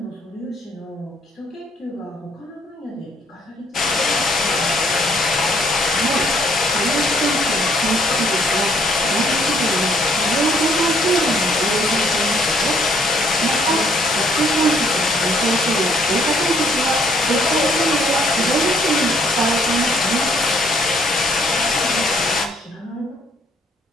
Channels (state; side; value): normal; both; correlation 0.65